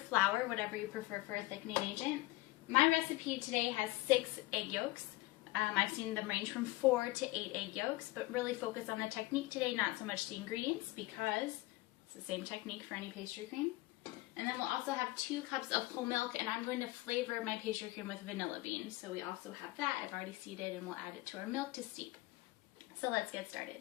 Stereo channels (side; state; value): right; quieter; 18.8 dB